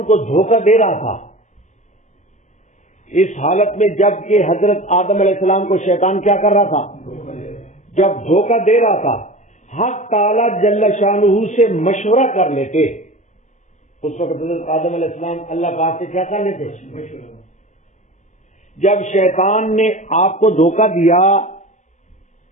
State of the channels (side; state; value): right; late; 0.34 ms